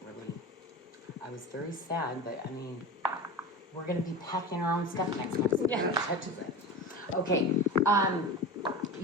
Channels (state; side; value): normal; both; correlation 0.29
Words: really, I was very sad, but I mean, we're going to be packing our own stuff next month. So yeah. Touches it. Okay.